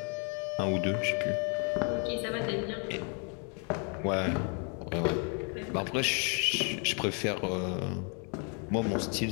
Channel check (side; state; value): right; quieter; 39.0 dB